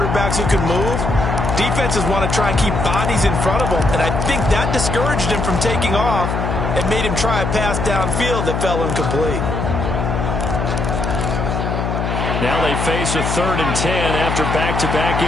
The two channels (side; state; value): left; noise; hum, 1 dB below the sound